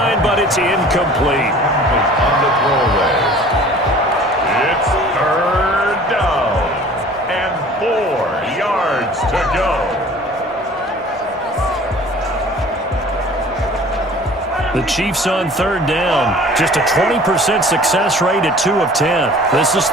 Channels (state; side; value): normal; both; correlation 0.47